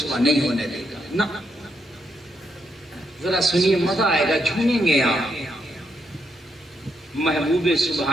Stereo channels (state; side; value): normal; both; correlation 0.79